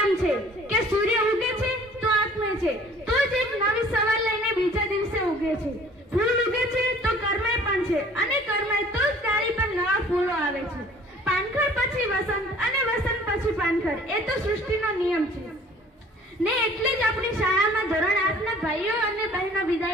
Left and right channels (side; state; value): both; normal; correlation 0.52